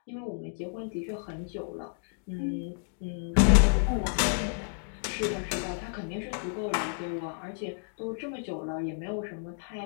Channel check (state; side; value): silent; right; digital silence